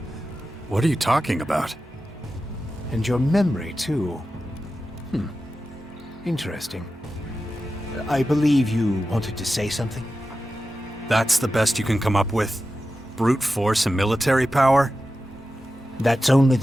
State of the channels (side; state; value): both; normal; correlation 0.92